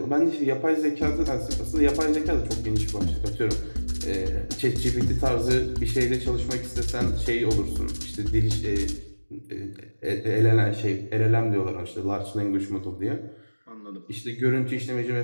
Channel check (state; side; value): inverted; both; correlation -1.00